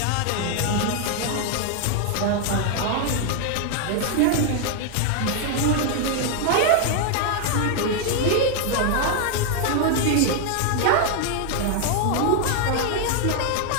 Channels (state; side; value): different; both; correlation 0.00